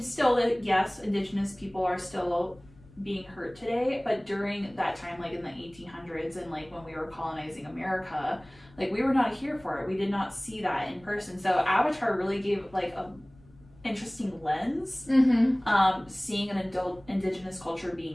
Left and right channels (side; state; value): left; noise; rumble, 26 dB below the sound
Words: still, yes, indigenous people are still being hurt today, but during that time, like in the 1800s and like when we were colonizing America, like we were not here for it. We did not see that in person. So Avatar really gave like a interesting lens, seeing an indigenous culture